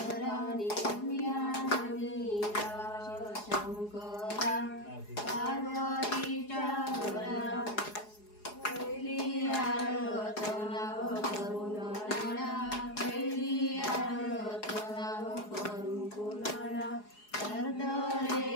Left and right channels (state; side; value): late; right; 4.8 ms